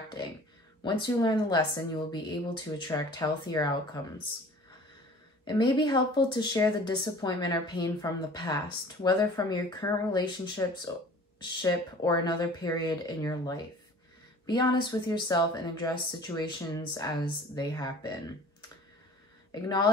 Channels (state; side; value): normal; both; correlation 0.46